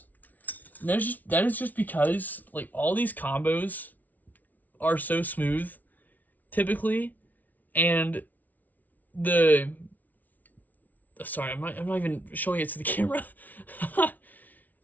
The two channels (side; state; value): right; late; 0.078 ms